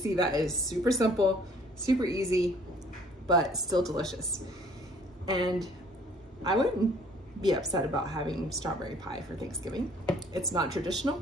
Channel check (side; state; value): both; normal; correlation 0.57